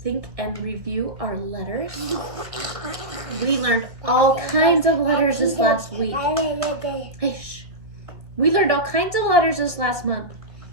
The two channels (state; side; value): late; left; 1.7 ms